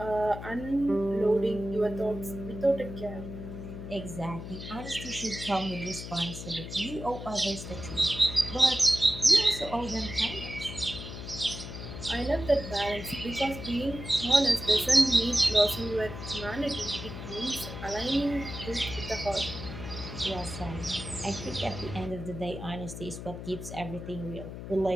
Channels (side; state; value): left; noise; hum, 9 dB below the sound